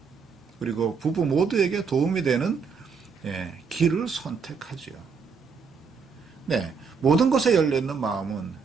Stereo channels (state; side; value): quieter; left; 5.6 dB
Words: 그리고 부부 모두에게 도움이 되는 길을 선택하지요. 네, 모든 것에 열려있는 마음은